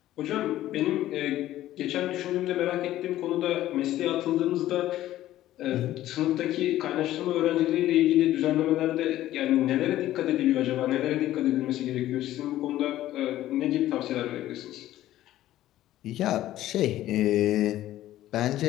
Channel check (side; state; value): right; quieter; 14.0 dB